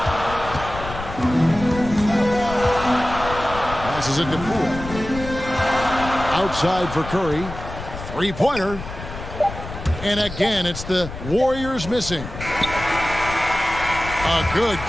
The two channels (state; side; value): noise; left; rumble, 10 dB below the sound